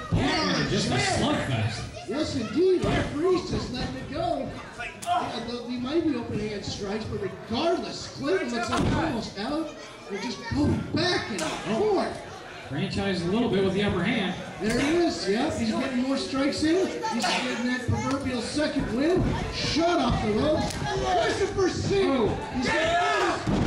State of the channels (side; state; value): both; identical; correlation 1.00